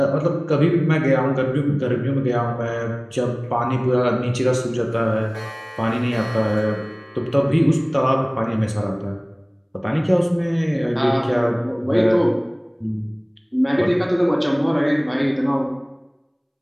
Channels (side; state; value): both; identical; correlation 1.00